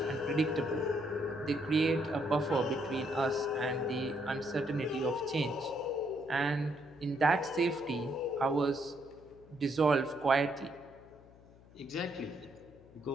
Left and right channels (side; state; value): left; noise; hum, 23 dB below the sound